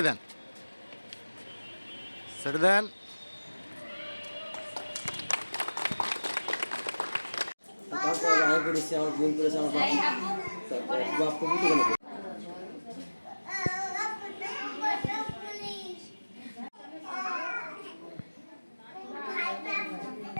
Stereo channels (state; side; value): inverted; both; correlation -1.00